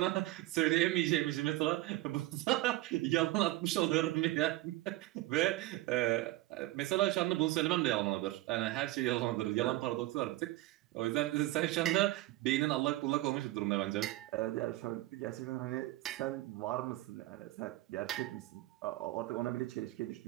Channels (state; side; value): quieter; left; 17.6 dB